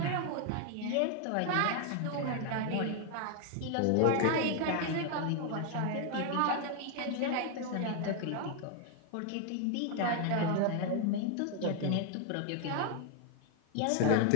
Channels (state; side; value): different; both; correlation 0.00